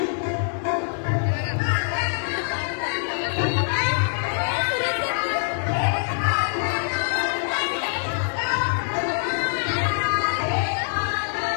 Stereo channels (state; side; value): silent; right; digital silence